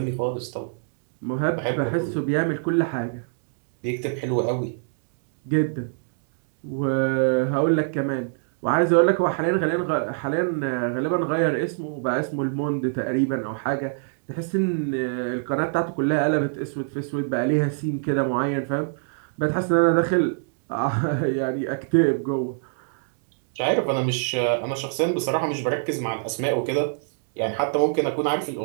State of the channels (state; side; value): silent; left; digital silence